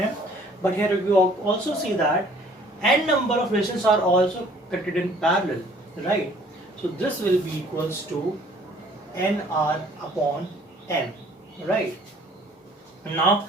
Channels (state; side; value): normal; both; correlation 0.56